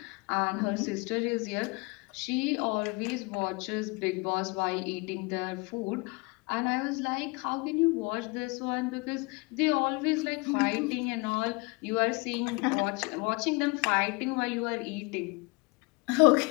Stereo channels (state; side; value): quieter; right; 28.0 dB